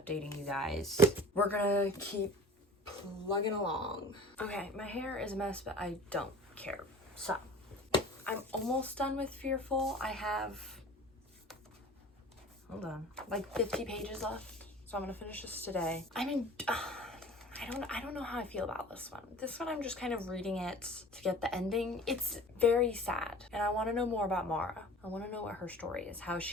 you guys. We're gonna keep plugging along. Okay, my hair is a mess, but I don't care. So, I'm almost done with Fearful. I have, hold on, like 50 pages left. So I'm gonna finish this today. I mean, I don't know how I feel about this one. This one, I'm just kind of reading it to get the ending. It's very sad, and I want to know more about Mara. I want to know what her story is, how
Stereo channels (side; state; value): both; normal; correlation 0.42